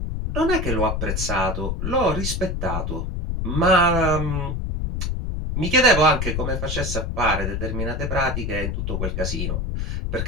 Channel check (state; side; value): noise; left; rumble, 2 dB below the sound